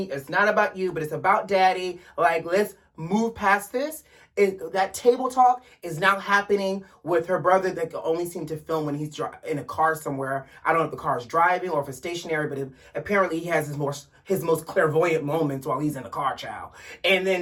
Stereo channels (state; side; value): identical; both; correlation 1.00